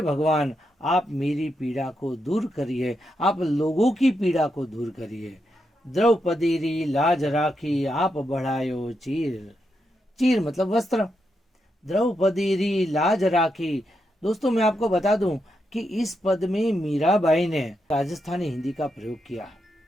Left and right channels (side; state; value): both; normal; correlation 0.83